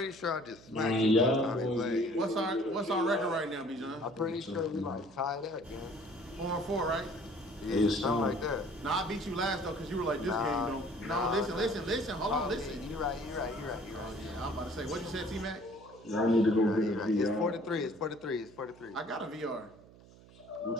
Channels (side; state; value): right; noise; hum, 22 dB below the sound